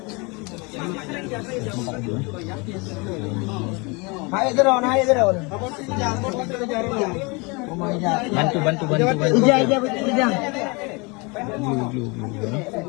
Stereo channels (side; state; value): right; quieter; 28.7 dB